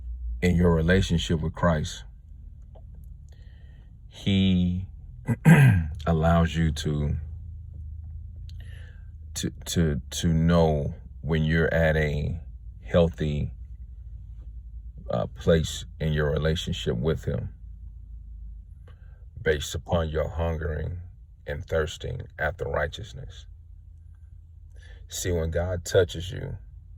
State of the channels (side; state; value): both; identical; correlation 1.00